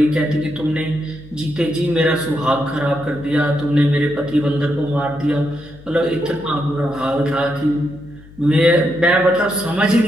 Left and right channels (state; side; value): noise; left; hum, 22 dB below the sound